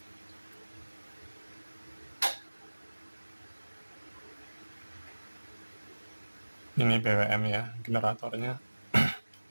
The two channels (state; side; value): inverted; both; correlation -1.00